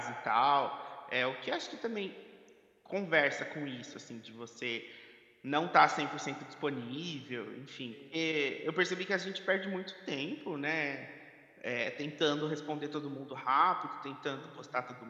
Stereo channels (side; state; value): both; identical; correlation 1.00